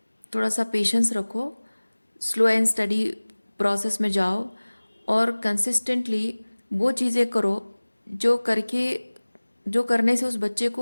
थोड़ा सा पेशेंस रखो, स्लो एंड स्टडी प्रोसेस में जाओ और कंसिस्टेंटली वो चीज़ें करो जो करने से उस बच्चे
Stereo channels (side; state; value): both; inverted; correlation -1.00